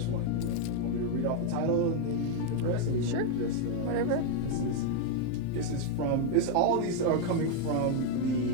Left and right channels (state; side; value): different; both; correlation 0.01